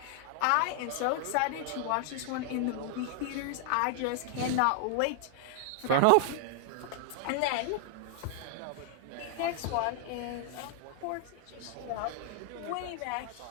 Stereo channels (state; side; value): different; both; correlation 0.00